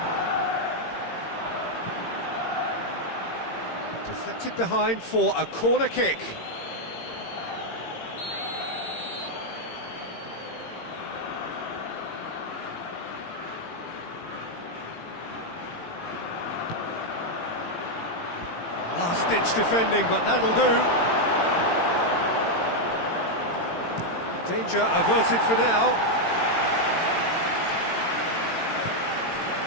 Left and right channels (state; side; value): late; right; 18 ms